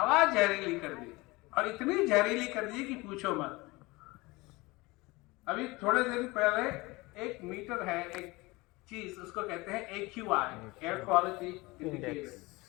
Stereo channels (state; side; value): quieter; right; 22.8 dB